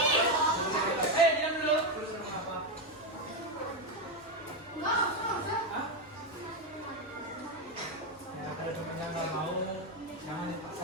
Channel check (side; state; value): both; normal; correlation 0.07